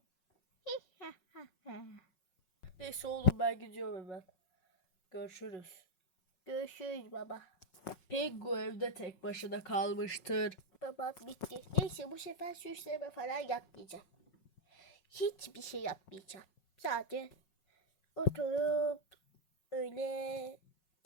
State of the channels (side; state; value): right; late; 5.5 ms